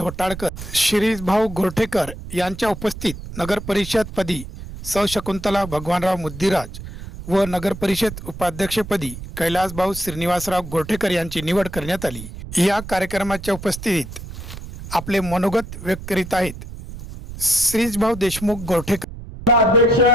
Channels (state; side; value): noise; right; rumble, 12 dB below the sound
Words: शिरीषभाऊ गोरठेकर यांच्या उपस्थित नगरपरिषदपदी सौ शकुंतला भगवानराव मुद्दीराज व नगरपरिषद उपाध्यक्षपदी कैलासभाऊ श्रीनिवासराव गोरठेकर यांची निवड करण्यात आली। या कार्यक्रमाच्या उपस्थितीत आपले मनोगत व्यक्त करीत आहेत श्रीषभाऊ देशमुख गोरठेकर। अध्यक्ष